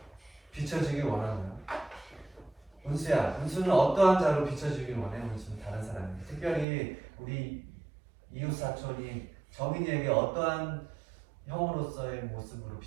비춰지길 원하나요? 은수야, 은수는 어떠한 자로 비춰지길 원해? 은수는 다른 사람에게, 특별히 우리 이웃 사촌인 정인이에게 어떠한 형으로서의 모습으로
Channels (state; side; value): drops out; left; at 6.7 s